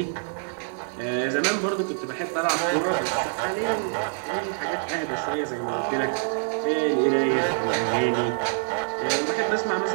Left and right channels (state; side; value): silent; left; digital silence